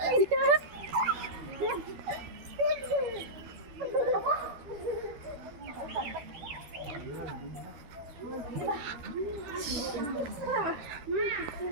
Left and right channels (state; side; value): late; left; 13 ms